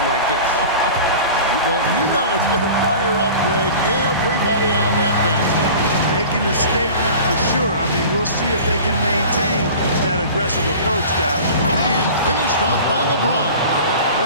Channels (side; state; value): both; inverted; correlation -0.39